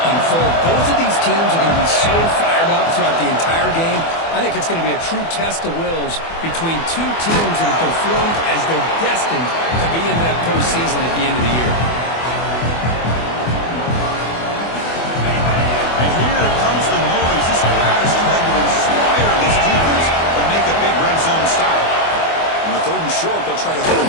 unfold. Both of these teams are going to be so fired up throughout the entire game. I think it's going to be a true test of wills between two teams that have performed as they're destined to be in that postseason at the end of the year. And here comes the noise. This crowd is trying to inspire this defense to make a big red zone stop. On the 3rd and short, they'll try to throw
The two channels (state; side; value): late; right; 24 ms